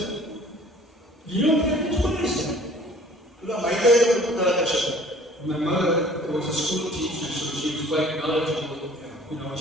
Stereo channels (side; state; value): both; normal; correlation 0.52